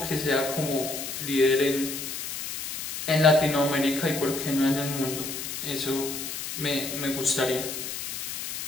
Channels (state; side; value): noise; left; hiss, 6 dB below the sound